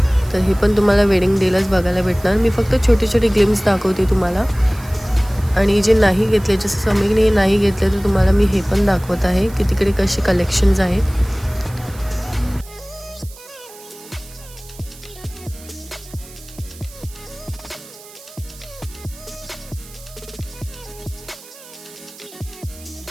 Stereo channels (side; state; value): right; noise; hiss, 20 dB below the sound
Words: तर हे पण तुम्हाला वेडिंग डेलाच बघायला भेटणार. मी फक्त छोटे छोटे ग्लिम्स दाखवते तुम्हाला. आणि जे नाही घेतले, जसं समीरने नाही घेतले, तर तुम्हाला मी हे पण दाखवत आहे की तिकडे कसे कलेक्शन्स आहेत.